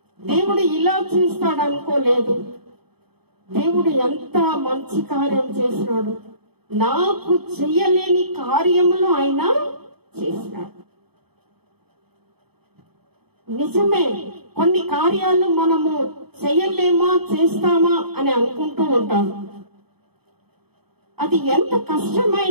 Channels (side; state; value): left; late; 0.97 ms